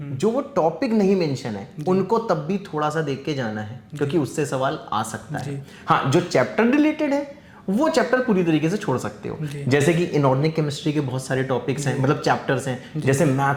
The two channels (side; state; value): both; identical; correlation 1.00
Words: जो वो टॉपिक नहीं मेंशन है, उनको तब भी थोड़ा सा देख के जाना है, क्योंकि उससे सवाल आ सकता है। हाँ, जो चैप्टर रिलेटेड है वो चैप्टर पूरी तरीके से छोड़ सकते हो। जैसे कि इनऑर्गेनिक केमिस्ट्री के बहुत सारे टॉपिक्स हैं, मतलब चैप्टर्स हैं, जैसे